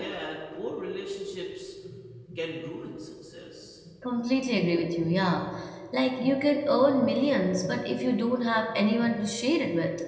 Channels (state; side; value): identical; both; correlation 1.00